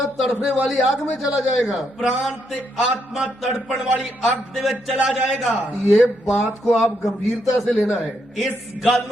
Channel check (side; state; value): both; normal; correlation 0.78